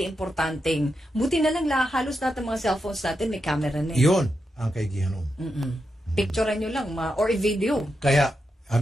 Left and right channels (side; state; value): both; normal; correlation 0.86